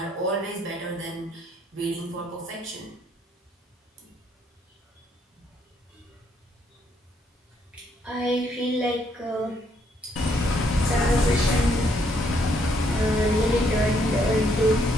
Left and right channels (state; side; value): normal; both; correlation 0.71